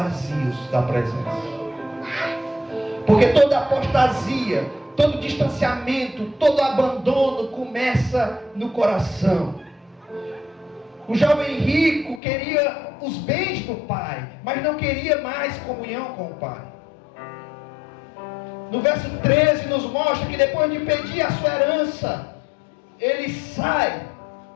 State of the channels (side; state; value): right; drops out; at 12.2 s